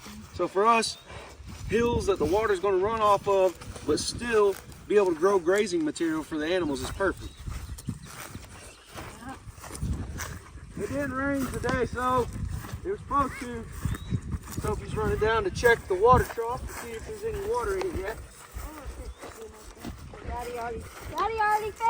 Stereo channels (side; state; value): both; identical; correlation 1.00